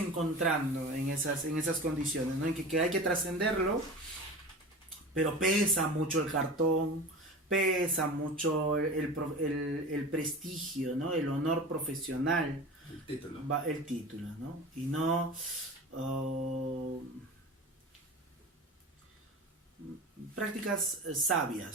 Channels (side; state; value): both; normal; correlation 0.33